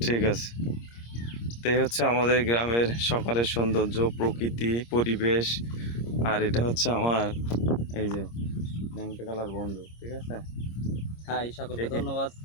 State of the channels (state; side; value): late; right; 26 ms